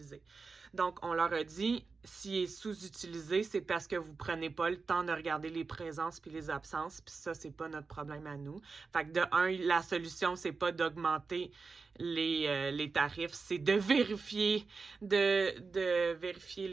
Donc, on leur a dit, s'il est sous-utilisé, c'est parce que vous prenez pas le temps de regarder les présences puis les absences, puis ça, c'est pas notre problème à nous. Fait que de un, la solution, c'est pas d'augmenter les tarifs, c'est de vérifier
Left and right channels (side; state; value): left; quieter; 4.6 dB